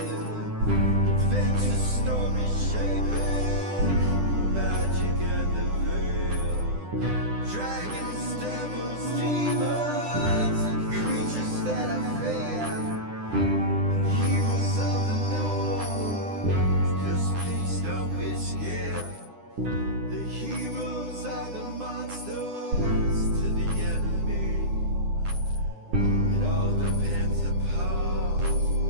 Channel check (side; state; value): left; late; 9.9 ms